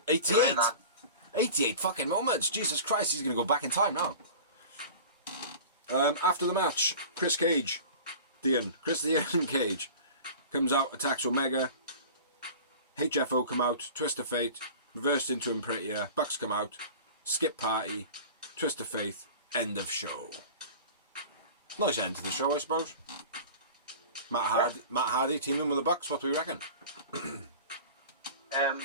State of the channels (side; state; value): both; inverted; correlation -0.38